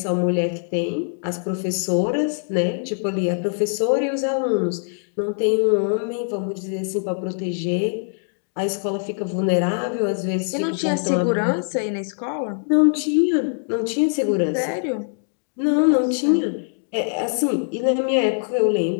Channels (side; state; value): right; silent; digital silence